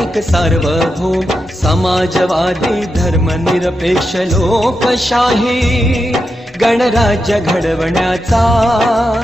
एक सार्वभौम समाजवादी धर्मनिरपेक्ष लोकशाही गणराज्य घडवण्याचा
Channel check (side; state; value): both; normal; correlation 0.87